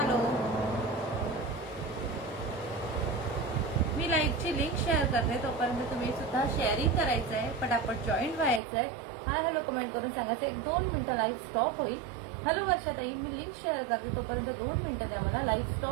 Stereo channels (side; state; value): left; drops out; at 8.6 s